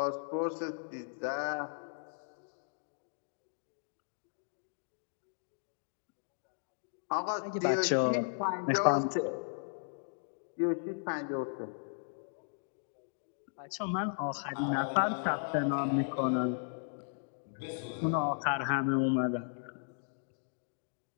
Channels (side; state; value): right; silent; digital silence